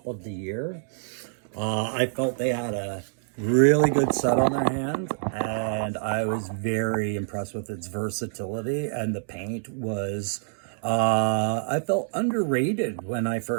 of the year. I felt they had a really good set on their hands, and I was very impressed with its versatility, and the paint was, I felt underrated when I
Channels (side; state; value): left; silent; digital silence